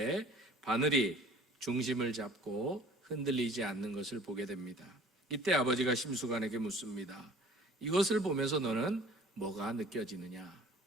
바늘이 중심을 잡고 흔들리지 않는 것을 보게 됩니다. 이때 아버지가 심수관에게 묻습니다. 이것을 보면서 너는 뭐가 느껴지느냐?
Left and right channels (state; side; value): normal; both; correlation 0.49